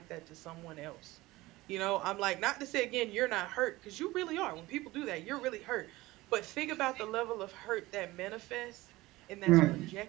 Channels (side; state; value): left; quieter; 19.3 dB